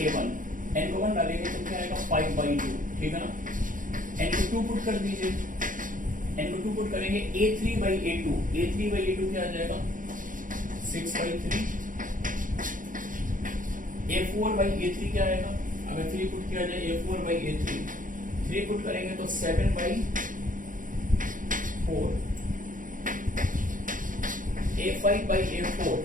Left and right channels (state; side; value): late; left; 0.39 ms